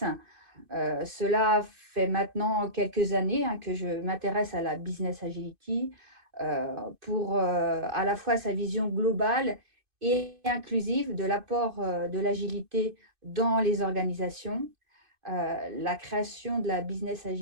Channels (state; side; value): late; left; 2.5 ms